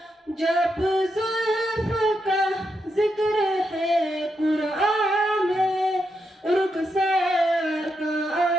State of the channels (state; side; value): normal; both; correlation 0.83